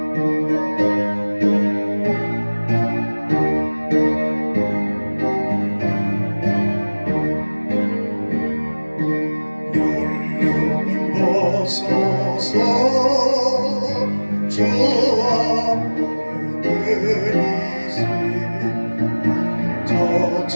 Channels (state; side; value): inverted; both; correlation -1.00